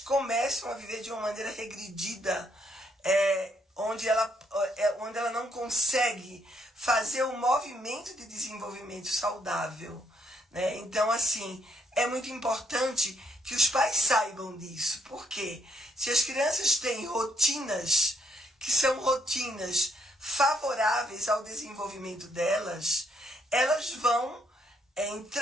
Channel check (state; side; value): normal; both; correlation 0.72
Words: a viver de uma maneira regredida, onde ela não consegue fazer um movimento de desenvolvimento saudável, né? Então, assim, é muito importante que os pais saibam disso. Porque se as crianças têm rotinas que são rotinas favoráveis ao desenvolvimento delas, elas vão